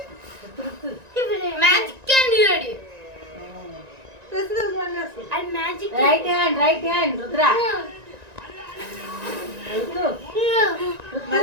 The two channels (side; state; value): left; late; 1.9 ms